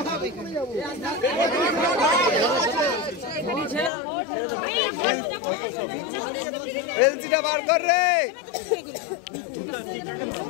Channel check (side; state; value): right; drops out; at 3.9 s